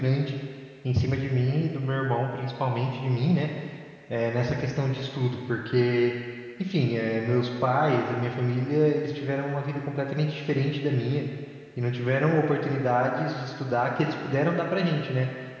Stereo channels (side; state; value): both; identical; correlation 1.00